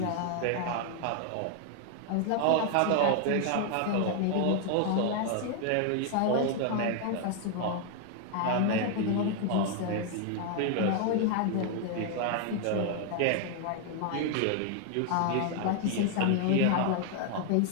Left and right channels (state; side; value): different; both; correlation 0.00